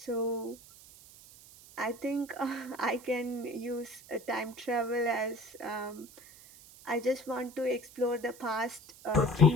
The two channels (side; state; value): right; noise; hiss, 20 dB below the sound